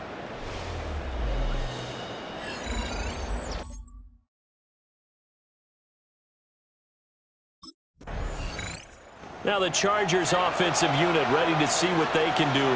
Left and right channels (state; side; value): identical; both; correlation 1.00